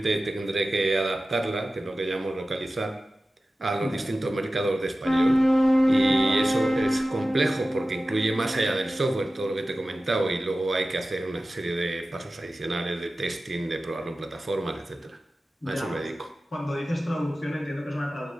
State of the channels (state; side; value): normal; both; correlation 0.95